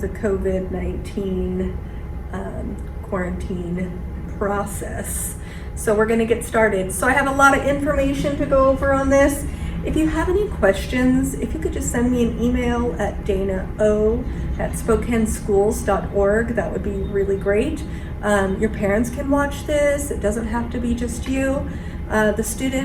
COVID-19 quarantine process. So we're going to get started. So I have a lot of information to go over on this. If you have any questions, if you could just send me an email at dana@spokaneschools.org, that would be really great. Your parents can watch this. It doesn't have to be just you. The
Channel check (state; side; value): identical; both; correlation 1.00